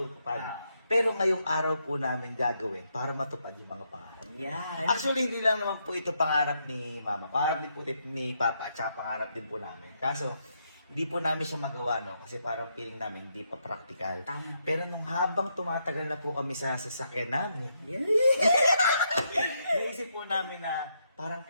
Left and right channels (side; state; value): both; inverted; correlation -0.78